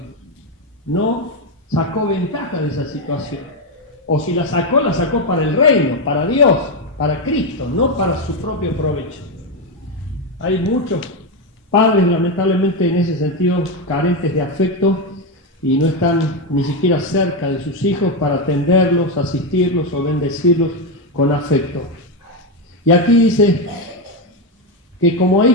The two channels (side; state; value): both; normal; correlation 0.08